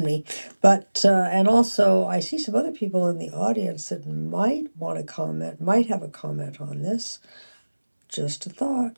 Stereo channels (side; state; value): both; inverted; correlation -1.00